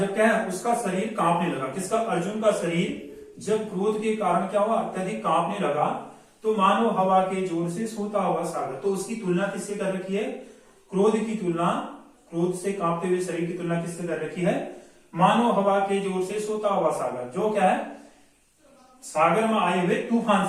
क्या है उसका शरीर कांपने लगा, किसका, अर्जुन का शरीर जब क्रोध के कारण क्या हुआ, अत्यधिक कांपने लगा, तो मानो हवा के जोर से सोता हुआ सागर। तो उसकी तुलना किससे कर रखी है, क्रोध की तुलना, क्रोध से कांपते हुए शरीर की तुलना किससे कर रखी है, मानो हवा के जोर से सोता हुआ सागर, जो क्या है सागर में आए हुए तूफान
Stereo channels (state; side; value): identical; both; correlation 1.00